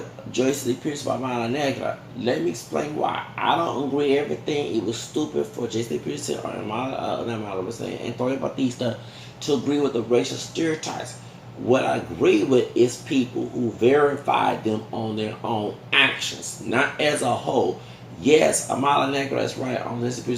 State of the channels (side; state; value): both; identical; correlation 1.00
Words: Joyce Lee Pierce by Mala Negra, let me explain why. I don't agree with everything. It was stupid for Joyce Lee Pierce or Antonio Batista to agree with the racial stereotypes. What I agree with is people who verify them on their own actions, not as a whole. Yes, Amala Negra is right on this